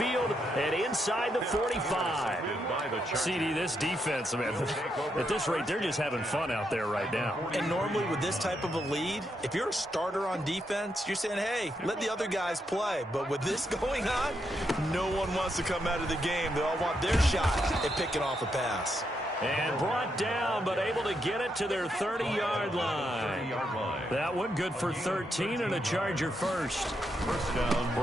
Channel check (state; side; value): normal; both; correlation 0.80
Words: and inside the 45. CD, this defense, man, at this rate, they're just having fun out there right now. And normally with this type of a lead, if you're a starter on defense, you're saying, hey, let the other guys play. But with this going on, no one wants to come out of the game. They all want their shot at picking off a pass. And brought down, but able to get it to their 30-yard line. That one good for 13 and a Charger first. First down.